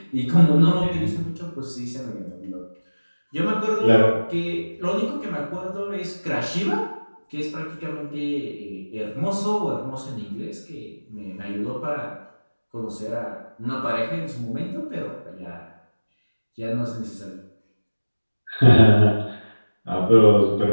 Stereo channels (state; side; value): inverted; both; correlation -1.00